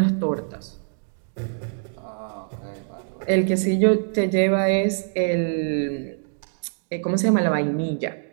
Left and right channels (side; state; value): left; silent; digital silence